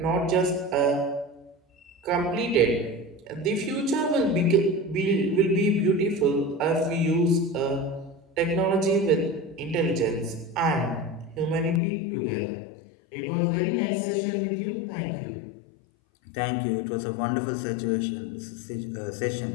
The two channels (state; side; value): drops out; right; at 11.8 s